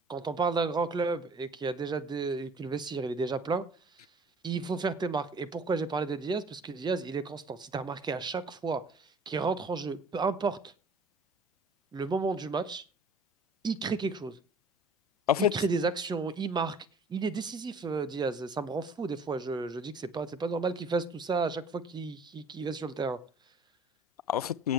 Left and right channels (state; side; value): normal; both; correlation 0.50